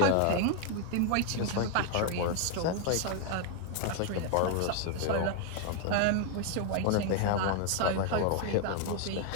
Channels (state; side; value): different; both; correlation 0.00